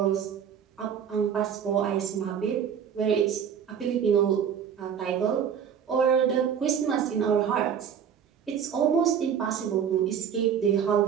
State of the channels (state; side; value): quieter; left; 8.0 dB